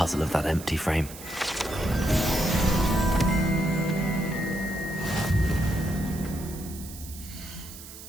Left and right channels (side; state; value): right; noise; hiss, 15 dB below the sound